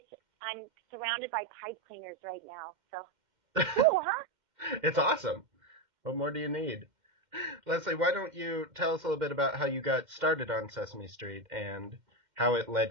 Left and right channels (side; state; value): left; late; 2.1 ms